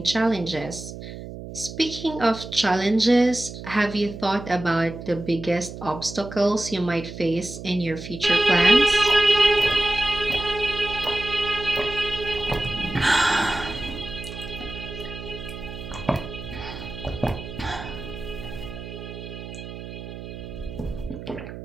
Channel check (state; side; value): noise; right; hum, 11 dB below the sound